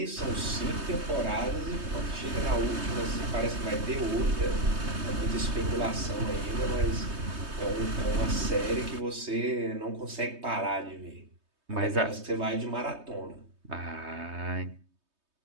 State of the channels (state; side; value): late; left; 3.2 ms